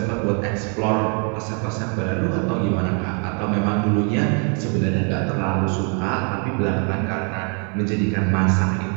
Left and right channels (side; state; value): left; quieter; 37.6 dB